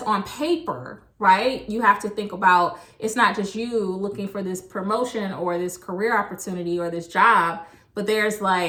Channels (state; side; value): identical; both; correlation 1.00